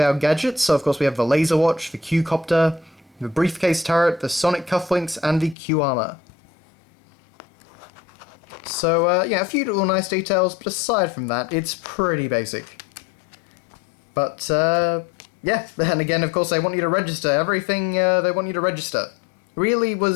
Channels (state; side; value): drops out; right; at 5.6 s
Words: gadgets. So, of course, we have the laser watch, the Q-copter, the briefcase turret, the sonic cufflinks, and the Q-armor. So, a few little nice details, but aside from that, it's pretty basic. But, yeah, and again, of course, they want you to register. Everything they want you to register. Really